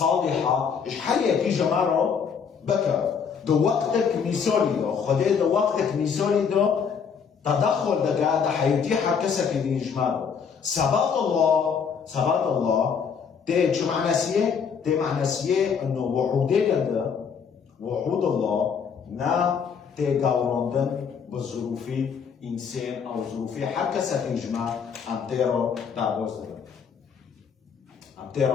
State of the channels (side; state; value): right; quieter; 6.5 dB